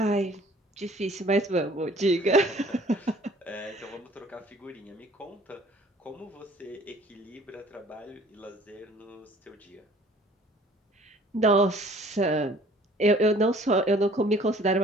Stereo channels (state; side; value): normal; both; correlation 0.54